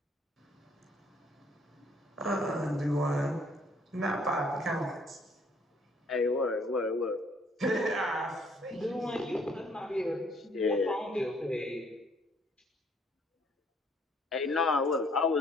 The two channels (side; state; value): both; normal; correlation 0.63